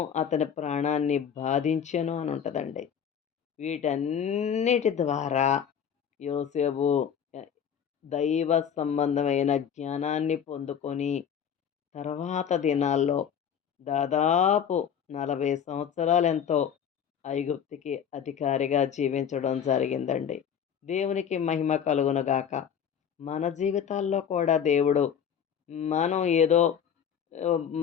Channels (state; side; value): quieter; right; 8.1 dB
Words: అతని ప్రాణాన్ని బాధించెను అని ఉంటుందండి. వీటన్నిటి ద్వారా యోసేపు ఎ దైవ సంబంధమైన జ్ఞానాన్ని పొందుకొని తర్వాత దినాల్లో దాదాపు 40 సంవత్సరాలెంతో ఐగుప్తుకి అధికారిగా జీవించడం జరిగిందండి. దేవునికి మహిమ కలుగునుగాక. మన జీవితాల్లో కూడా దేవుడు మనం ఏదో